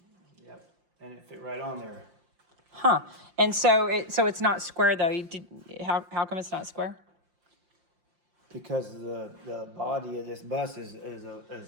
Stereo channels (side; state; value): left; late; 5.7 ms